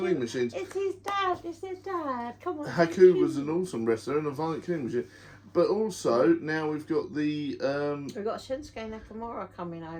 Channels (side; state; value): both; identical; correlation 1.00